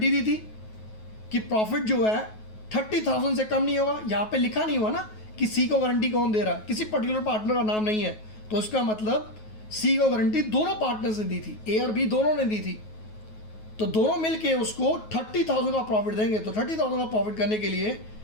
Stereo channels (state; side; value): late; right; 9.3 ms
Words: दी थी कि प्रॉफिट जो है 30,000 से कम नहीं होगा। यहाँ पे लिखा नहीं हुआ ना कि सी को गारंटी कौन दे रहा है, किसी पर्टिकुलर पार्टनर का नाम नहीं है, तो इसका मतलब सी को गारंटी दोनों पार्टनर्स ने दी थी, ए और बी दोनों ने दी थी। तो दोनों मिलके उसको 30,000 का प्रॉफिट देंगे। तो 30,000 का प्रॉफिट करने के लिए